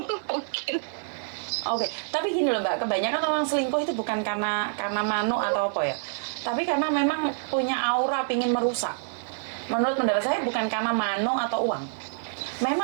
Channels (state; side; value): silent; left; 58 dB below the other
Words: Mungkin. Oke, tapi gini loh Mbak, kebanyakan orang selingkuh itu bukan karena mano atau apa ya, tapi karena memang punya aura pingin merusak. Menurut pendapat saya bukan karena mano atau uang.